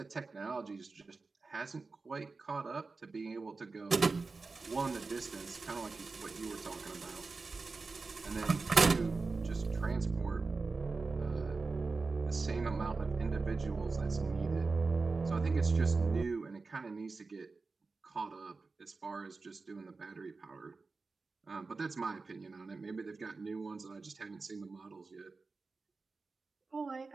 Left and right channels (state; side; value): quieter; left; 4.0 dB